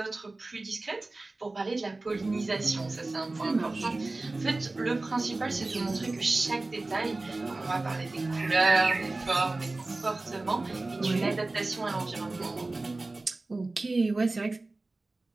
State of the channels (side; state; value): left; quieter; 3.1 dB